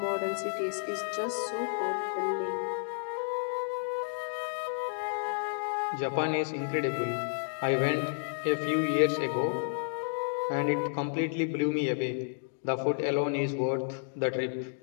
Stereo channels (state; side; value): silent; right; digital silence